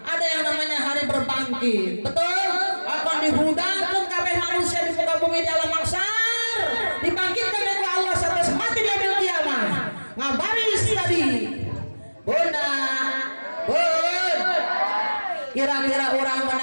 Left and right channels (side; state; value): both; inverted; correlation -1.00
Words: Ada yang namanya hari berbangkit. Betul? Akan dihudangkan kabeh manusia di muka bumi di alam mahsyar, dibangkitkan oleh Allah sampai mati di yaumil kiamah. Ngabaris tadi Bunda, kira-kira orang